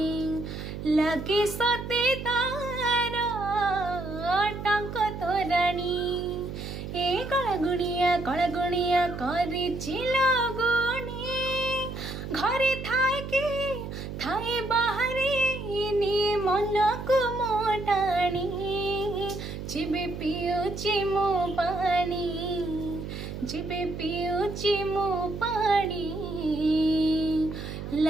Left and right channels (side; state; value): right; noise; hum, 8 dB below the sound